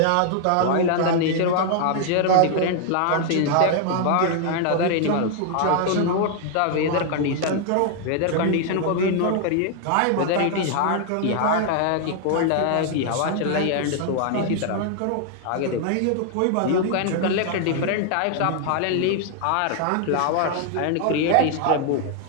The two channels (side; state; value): both; different; correlation 0.00